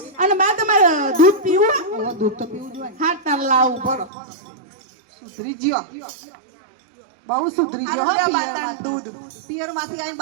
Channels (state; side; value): drops out; left; at 4.1 s